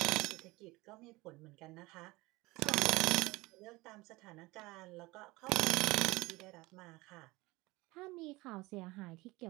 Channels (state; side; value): quieter; left; 21.7 dB